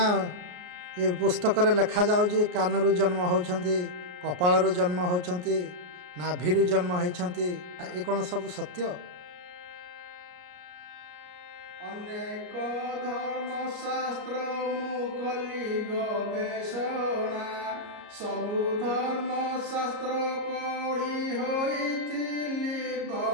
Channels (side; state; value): left; late; 33 ms